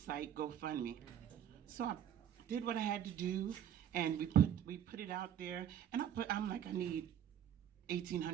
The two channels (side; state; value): left; quieter; 9.8 dB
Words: GoFundMe. So I did what I had to do, and we put it out there. And I'm like, I need